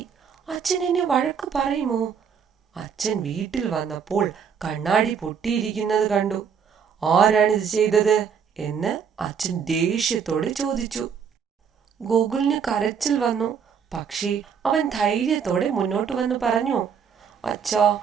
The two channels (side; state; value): left; quieter; 7.0 dB